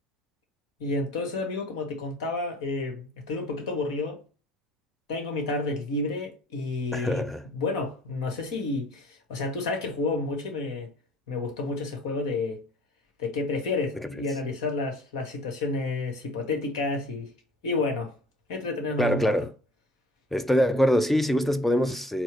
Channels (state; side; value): normal; both; correlation 0.51